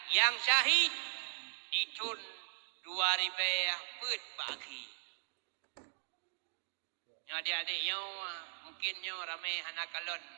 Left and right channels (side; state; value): left; silent; digital silence